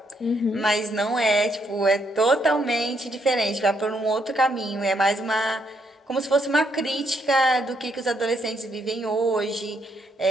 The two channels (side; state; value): both; normal; correlation 0.74